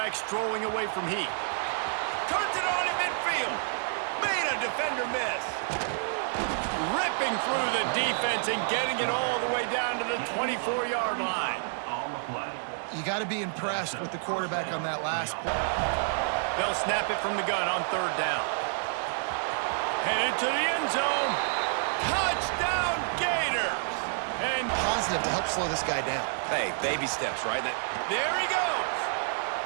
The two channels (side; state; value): left; silent; digital silence